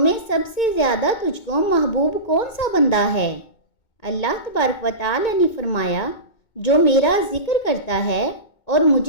میں سب سے زیادہ تجھ کو محبوب کون سا بندہ ہے؟ اللہ تبارک و تعالی نے فرمایا، جو میرا ذکر کرتا ہے اور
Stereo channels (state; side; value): late; right; 2.2 ms